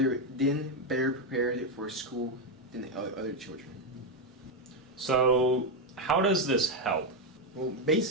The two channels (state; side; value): normal; both; correlation 0.05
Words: then better prepared for school than other children. So, how does this help? Well,